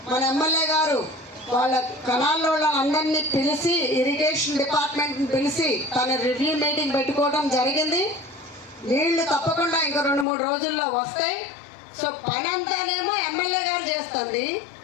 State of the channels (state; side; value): drops out; right; at 10.2 s